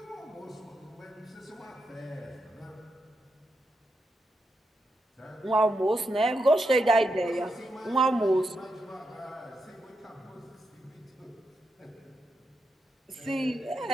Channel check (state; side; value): normal; both; correlation 0.85